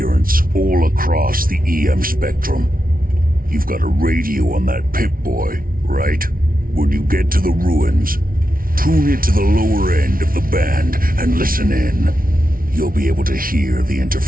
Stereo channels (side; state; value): left; late; 0.42 ms